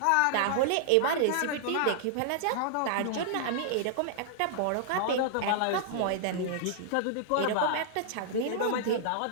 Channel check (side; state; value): both; different; correlation -0.01